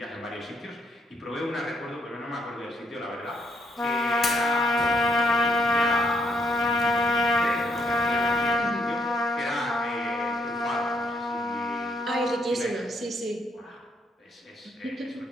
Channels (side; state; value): both; normal; correlation 0.73